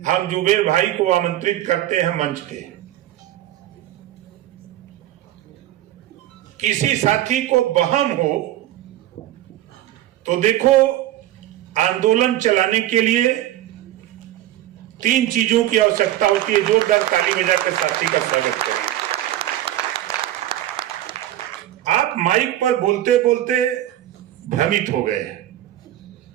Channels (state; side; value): quieter; left; 13.7 dB